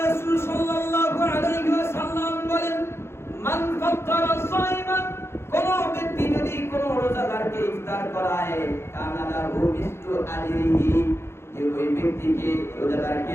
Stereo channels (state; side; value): late; right; 0.12 ms